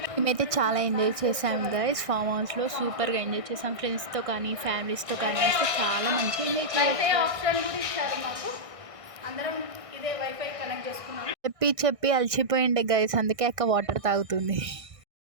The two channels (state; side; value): late; left; 1.6 ms